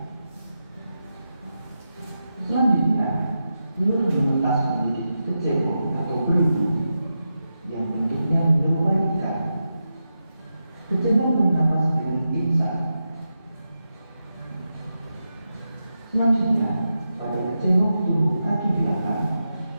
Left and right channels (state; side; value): inverted; both; correlation -0.89